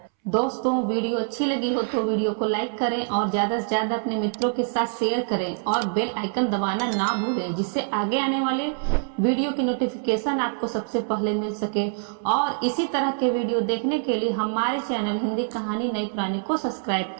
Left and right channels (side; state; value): left; silent; 62 dB below the other